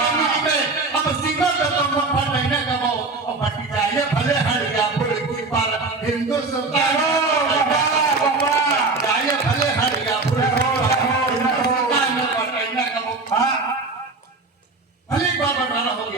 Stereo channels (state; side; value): quieter; left; 3.6 dB